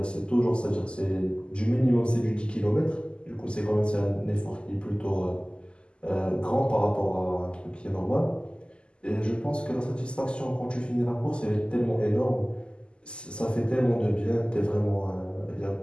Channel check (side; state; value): right; late; 0.050 ms